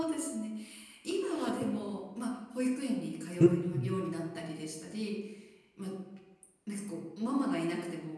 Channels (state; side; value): identical; both; correlation 1.00